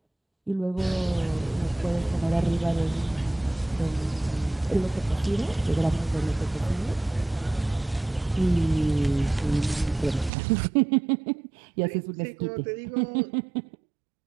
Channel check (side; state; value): left; drops out; at 10.3 s